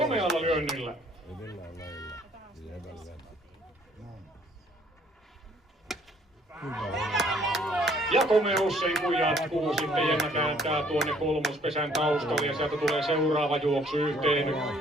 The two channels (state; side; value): normal; both; correlation 0.61